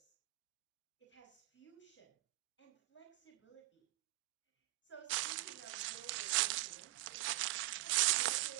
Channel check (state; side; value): quieter; left; 19.1 dB